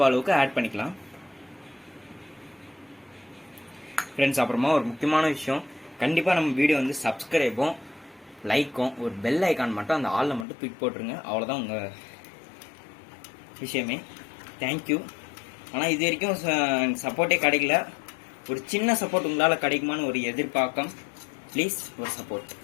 அளவுக்கு ஆட் பண்ணிக்கலாம் ஃப்ரெண்ட்ஸ். அப்புறமா ஒரு முக்கியமான விஷயம், கண்டிப்பாக நம்ம வீடியோ வந்து சப்ஸ்கிரைபும் லைக்கும் ஒரு பெல் ஐக்கான் மட்டும் அந்த ஆளில் மட்டும் தூக்கி போட்டுருங்க. அவ்வளோதான் உங்கள் விஷயமே. தேங்க்யூ. ஆனால் இது வரைக்கும் சப்போர்ட்டே கிடைக்கல. ஒரு சின்ன சப்போர்ட் உங்களால் கிடைக்குமான்னு ஒரு எதிர்பார்க்கம். ப்ளீஸ் ஒரு சப்போர்ட்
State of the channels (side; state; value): right; drops out; at 10.5 s